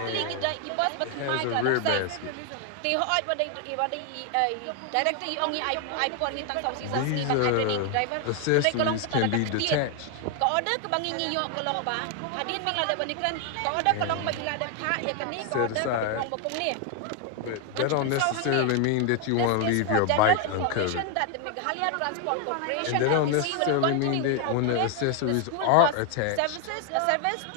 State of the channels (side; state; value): both; different; correlation 0.01